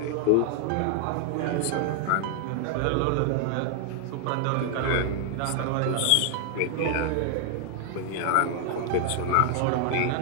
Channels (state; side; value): different; both; correlation 0.00